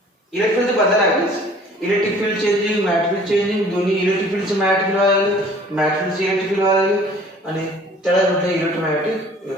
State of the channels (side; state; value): both; normal; correlation 0.52